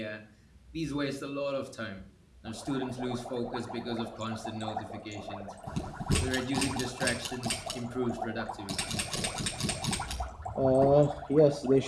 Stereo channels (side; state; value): both; identical; correlation 1.00